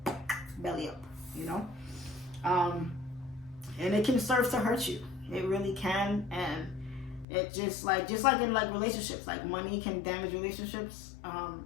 belly up, you know? And it can serve to hurt you. It really can. And it just like in like relationships, like money can damage relationships.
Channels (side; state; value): right; drops out; at 7.2 s